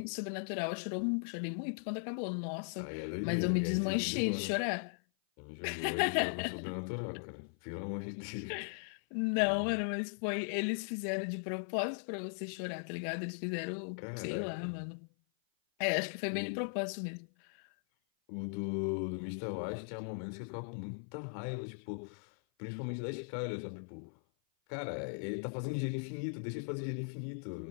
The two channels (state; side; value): silent; right; 52 dB below the other